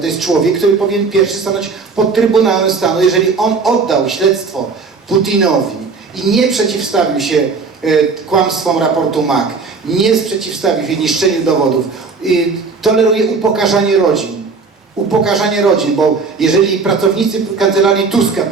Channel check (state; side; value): quieter; left; 4.6 dB